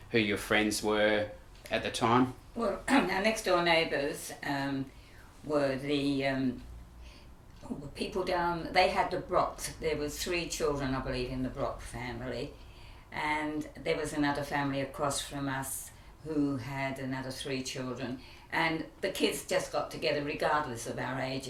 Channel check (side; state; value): both; identical; correlation 1.00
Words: who your friends were at the time. Well, our next door neighbours were the people down. They had the Brocks. There was 3 children, I believe, in the Brock family, and there was another family across from us who had another 3 children. And the kids just got together regardless of our